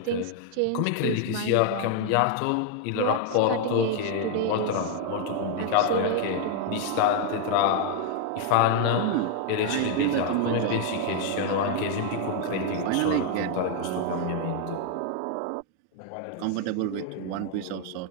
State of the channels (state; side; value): different; both; correlation 0.00